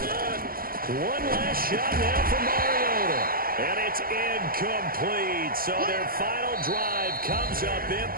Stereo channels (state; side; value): late; left; 0.42 ms